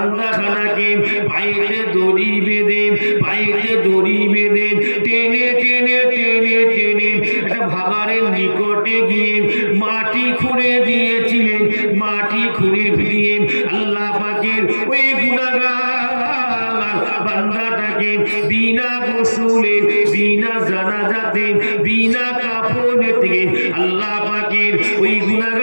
পায়েতে দড়ি বেঁধে টেনে টেনে টেনে টেনে একটা ভাগাড়ের নিকটে গিয়ে মাটি খুঁড়ে দিয়েছিলেন। মাটি খুঁড়ে দিয়ে আল্লাহ পাকের ওই গুনাহগার বান্দাটাকে বিনা গোসলে, বিনা জানাজাতে, বিনা কাফনে থেকে আল্লাহ পাকের ওই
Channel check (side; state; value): both; inverted; correlation -1.00